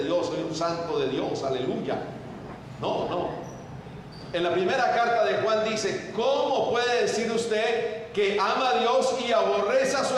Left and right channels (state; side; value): identical; both; correlation 1.00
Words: Dios, soy un santo de Dios, aleluya. No. En la primera carta de Juan dice, ¿cómo puede decir usted que ama a Dios y aborrece a su